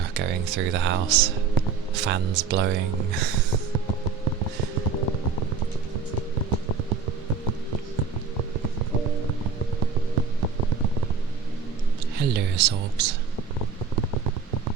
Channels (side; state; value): left; quieter; 5.4 dB